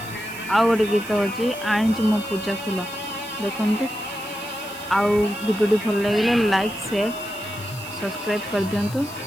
आउ गोटे गीत हूँ आनी मो पूजा फूल। देखते आउ वीडियो भल लगे लाइक शेयर सब्सक्राइब कर दिंतु।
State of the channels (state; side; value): noise; left; hiss, 17 dB below the sound